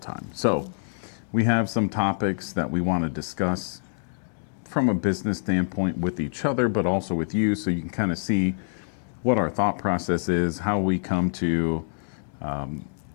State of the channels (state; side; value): silent; right; digital silence